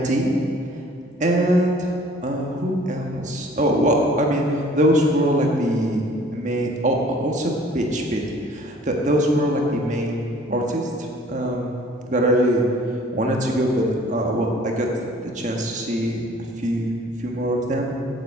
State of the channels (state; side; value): normal; both; correlation 0.53